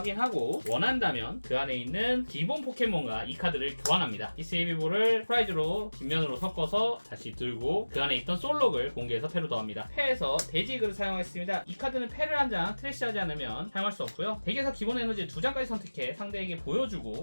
원한다면 그 안에 있는 기본 포켓몬과 이 카드를 교환합니다. 히스이 헤비볼을 프라이즈로 뒷면으로 섞어서 다시 들고 그 안에 있던 솔록을 공개해서 패로 더합니다. 패에서 돼지그를 사용하겠습니다. 이 카드는 패를 한 장 트래시하지 않으면 사용할 수 없고요. 덱에서 기본 에너지 2장까지 선택해 상대에게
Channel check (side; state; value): both; inverted; correlation -1.00